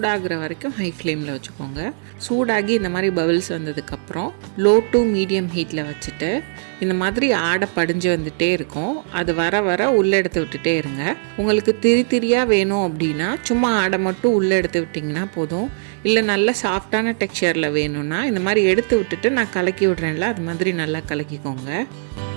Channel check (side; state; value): left; silent; 66 dB below the other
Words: வரைக்கும் ஹை ஃப்ளேமில் வச்சுக்கோங்க. சூடாகி இந்த மாதிரி பபிள்ஸ் வந்ததுக்கப்புறம் லோ டு மீடியம் ஹீட்டில் வச்சுட்டு இந்த மாதிரி ஆடை படிஞ்சு வந்துகிட்டே இருக்கும். அது வர வர உள்ளே எடுத்து விட்டுட்டே இருங்க. உங்களுக்கு திரியாக வேணும் அப்படின்னா சும்மா ஆடை மட்டும் உள்ளே எடுத்து விட்டிங்கன்னா போதும். இல்லை நல்ல சாஃப்டான டெக்ஸ்சரில் வேணும்னா இந்த மாதிரி எடுத்து விட்டுட்டு நான் கலக்கி விட்றேன்ல, அது மாதிரி நல்லா கலக்கிக்கோங்க.